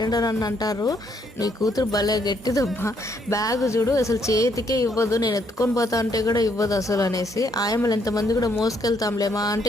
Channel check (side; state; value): both; normal; correlation 0.71